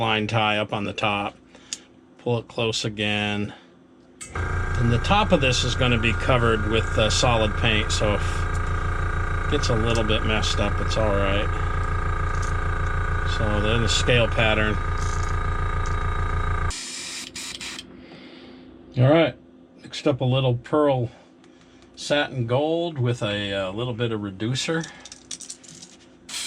tie up on the top. Pull it close again. And the top of this is going to be covered with solid paint, so if it gets a little bit messed up, it's all right. So then the scale pattern. All right, mixed up a little pearl satin gold with a little bit of reducer.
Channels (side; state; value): both; identical; correlation 1.00